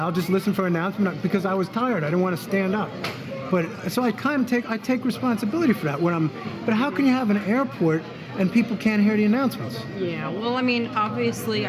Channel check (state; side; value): identical; both; correlation 1.00